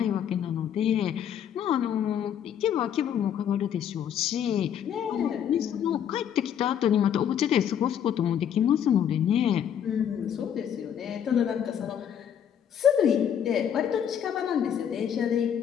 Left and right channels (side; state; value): right; quieter; 9.1 dB